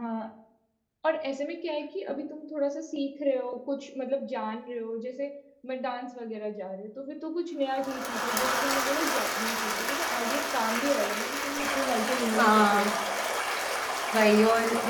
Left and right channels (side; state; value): both; identical; correlation 1.00